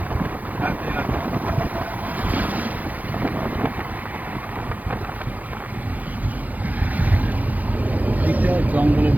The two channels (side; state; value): left; late; 0.079 ms